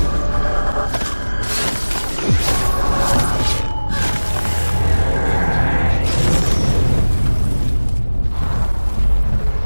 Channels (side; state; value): both; inverted; correlation -1.00